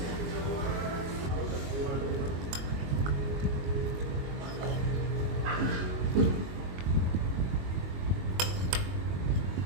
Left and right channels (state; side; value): late; left; 22 ms